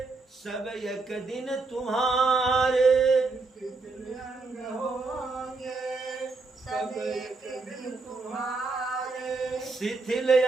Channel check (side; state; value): left; quieter; 3.8 dB